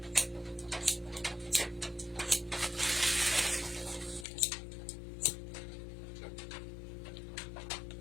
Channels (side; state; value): right; drops out; at 4.2 s